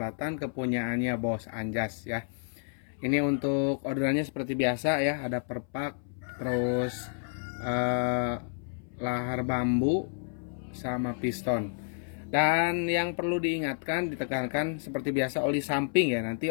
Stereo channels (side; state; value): right; silent; 58 dB below the other